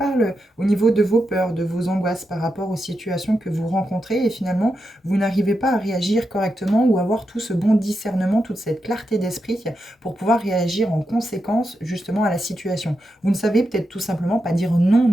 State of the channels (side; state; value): both; normal; correlation 0.87